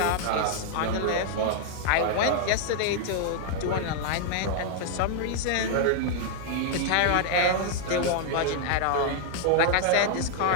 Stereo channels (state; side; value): different; both; correlation -0.01